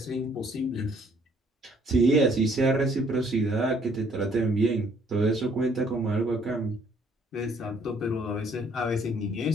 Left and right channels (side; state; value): both; normal; correlation 0.63